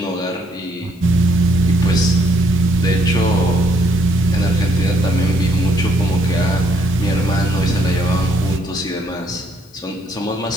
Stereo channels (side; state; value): left; noise; hiss, 30 dB below the sound